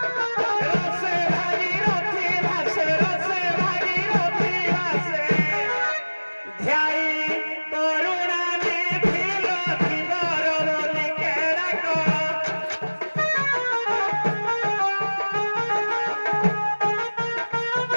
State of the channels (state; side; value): inverted; both; correlation -1.00